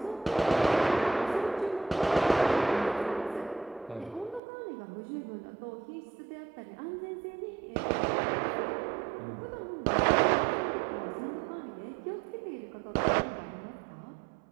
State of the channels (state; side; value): drops out; left; at 4.4 s